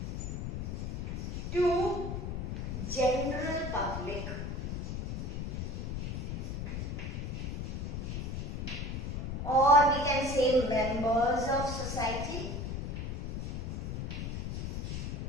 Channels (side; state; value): left; noise; rumble, 3 dB below the sound